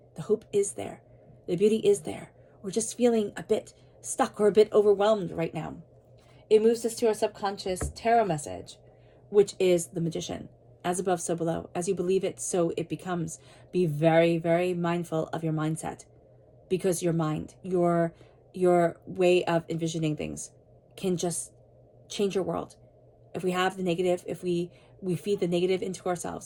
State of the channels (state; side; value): identical; both; correlation 1.00